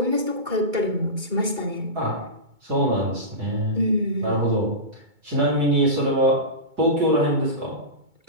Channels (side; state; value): left; late; 2.2 ms